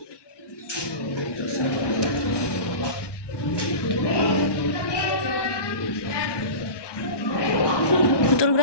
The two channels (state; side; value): late; right; 1.2 ms